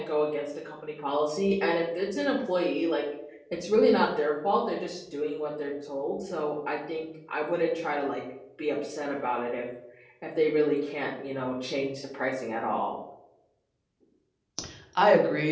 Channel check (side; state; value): both; identical; correlation 1.00